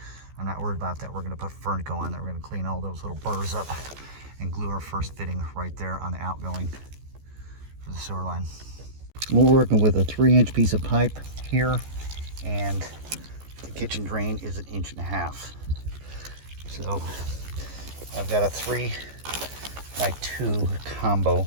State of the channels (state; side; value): late; left; 14 ms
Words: I'm not worried about that. We're gonna put Fernco on there. We're gonna clean all those little burrs up and glue our first fitting right there on the outgoing for the sewer line. We're working with a 3-inch piece of pipe here, and the kitchen drain is 1.5 inches. So I've got a 3x2 combo